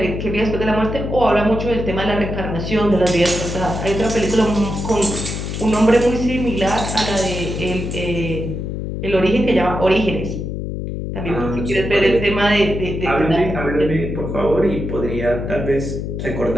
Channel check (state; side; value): noise; left; hum, 5 dB below the sound